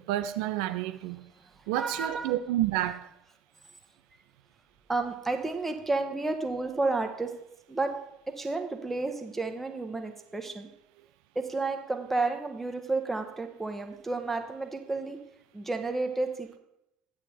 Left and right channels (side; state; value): left; quieter; 4.5 dB